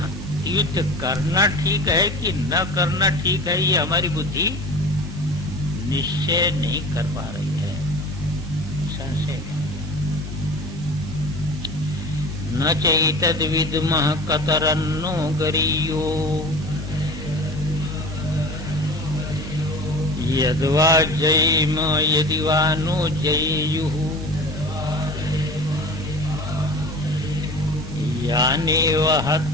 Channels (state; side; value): normal; both; correlation 0.37